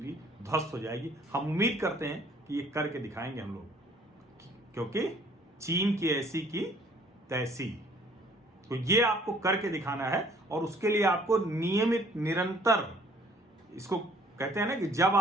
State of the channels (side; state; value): both; normal; correlation 0.58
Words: ध्वस्त हो जाएगी। हम उम्मीद करते हैं कि ये करके दिखाएंगे हम लोग, क्योंकि चीन की ऐसी की तैसी। तो ये आपको करके दिखाना है, और उसके लिए आपको नियमित, निरंतर, इसको कहते हैं ना कि जब